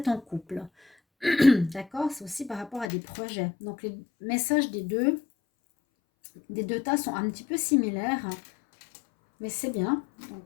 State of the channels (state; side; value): drops out; right; at 2.9 s